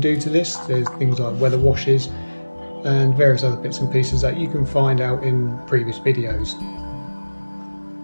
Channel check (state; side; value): inverted; both; correlation -1.00